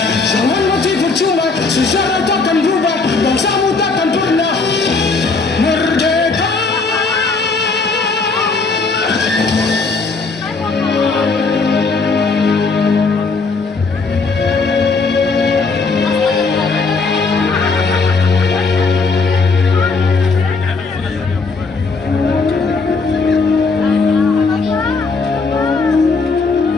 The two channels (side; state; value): right; quieter; 4.2 dB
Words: Jangan mati percuma, sejarah takkan berubah, bangsamu takkan pernah merdeka.